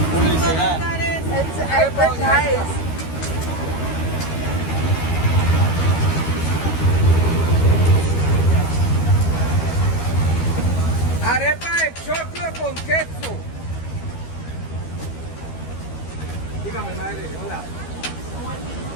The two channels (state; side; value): late; right; 13 ms